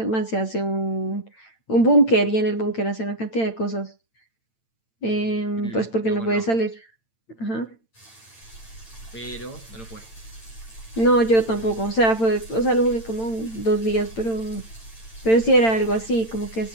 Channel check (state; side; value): late; right; 8.9 ms